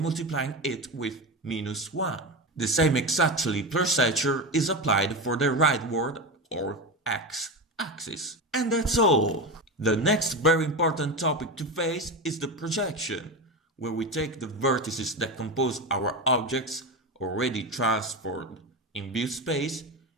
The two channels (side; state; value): both; normal; correlation 0.19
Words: it with -1. The same exactly procedure is applied for the rightward or X axis. And that's all. The next very important topic to face is the projection, where we take the vertices that compose our objects already transformed in view space